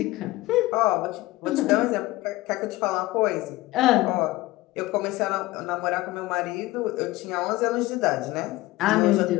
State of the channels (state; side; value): quieter; right; 18.7 dB